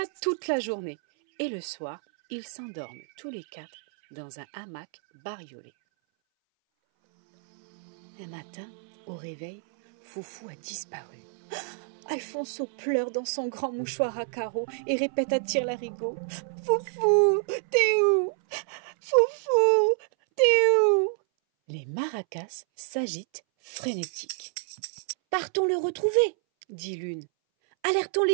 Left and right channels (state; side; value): silent; left; 59 dB below the other